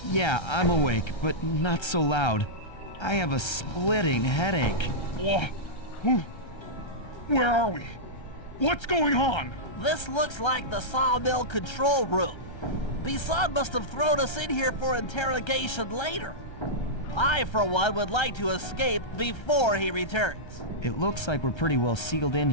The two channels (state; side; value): late; right; 1.3 ms